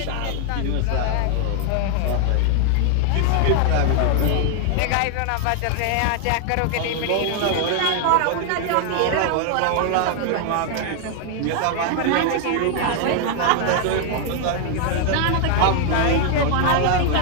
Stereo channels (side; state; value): both; different; correlation 0.00